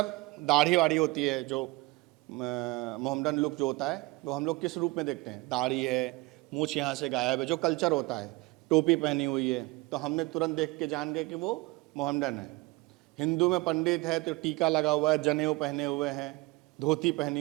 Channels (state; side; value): quieter; left; 23.1 dB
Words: दाढ़ी वाड़ी होती है, जो मोहम्मडन लुक जो होता है वो हम लोग किस रूप में देखते हैं, दाढ़ी है, मूछ यहाँ से गायब है, जो कल्चर होता है, टोपी पहनी हुई है, तो हमने तुरंत देख के जान गए कि वो मोहम्मडन है। हिंदू में पंडित है तो टीका लगा हुआ है, जनेऊ पहने हुए हैं, धोती पहनी